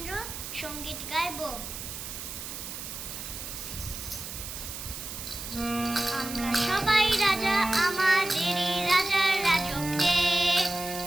সঙ্গীত গাইব। আমরা সবাই রাজা, আমাদেরই রাজার রাজত্বে,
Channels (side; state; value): right; noise; hiss, 8 dB below the sound